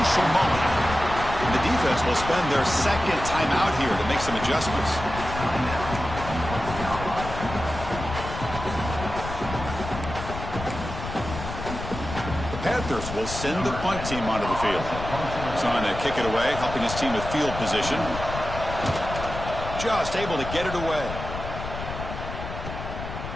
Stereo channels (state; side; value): noise; left; rumble, 8 dB below the sound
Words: moment. And the defense will spend their second timeout here to make some adjustments. Panthers will send the punt team onto the field. He's on to kick it away, helping his team with field position. Just able to get it away.